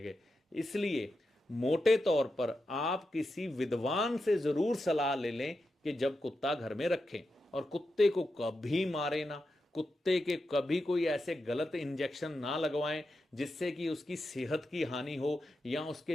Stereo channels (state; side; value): normal; both; correlation 0.88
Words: गए। इसलिए मोटे तौर पर आप किसी विद्वान से जरूर सलाह ले लें कि जब कुत्ता घर में रखें, और कुत्ते को कभी मारे ना, कुत्ते के कभी कोई ऐसे गलत इंजेक्शन ना लगवाएं जिससे कि उसकी सेहत की हानि हो या